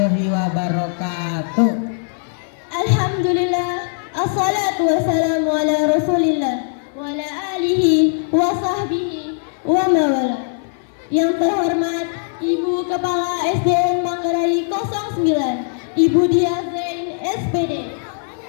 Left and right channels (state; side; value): silent; right; 59 dB below the other